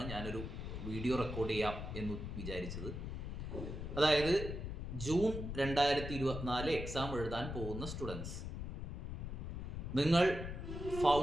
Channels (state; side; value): noise; left; rumble, 5 dB below the sound